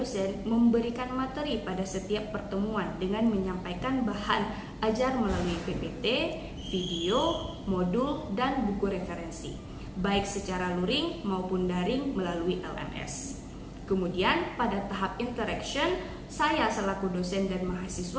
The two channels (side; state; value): both; identical; correlation 1.00